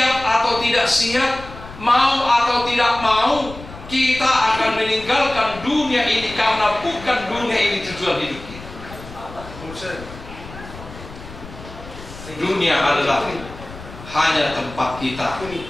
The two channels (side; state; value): left; noise; rumble, 15 dB below the sound